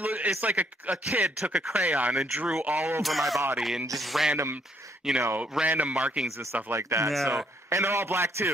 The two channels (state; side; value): normal; both; correlation 0.69